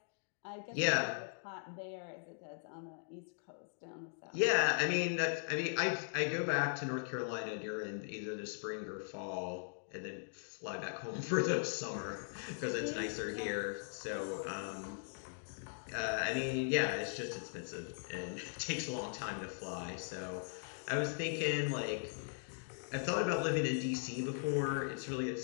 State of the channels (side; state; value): right; silent; digital silence